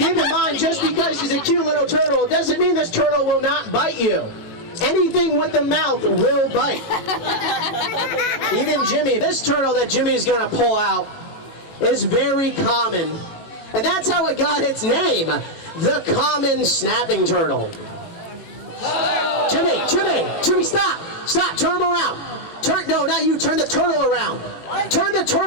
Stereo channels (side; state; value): right; late; 18 ms